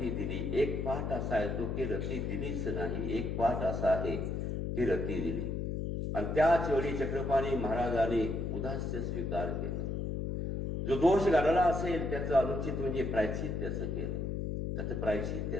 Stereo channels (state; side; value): noise; left; hum, 2 dB below the sound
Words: दिली. एक पाठ असा येतो की रती दिलीच नाही, एक पाठ असा आहे की रती दिली. आणि त्याच वेळी चक्रपाणी महाराजांनी उदास्य स्वीकार केलं. जो दोष घडला असेल त्याचं अनुचित म्हणजे प्रायश्चित त्याचं केलं, त्याचं प्रायश्चित